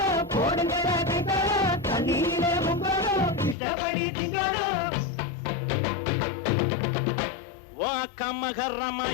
போடுங்க கைத்தாலோ, தண்ணியிலே கும்பாலோ இஷ்டப்படி திங்காலோ.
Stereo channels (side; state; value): right; drops out; at 3.6 s